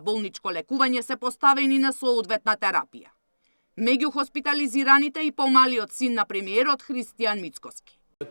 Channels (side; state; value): both; inverted; correlation -1.00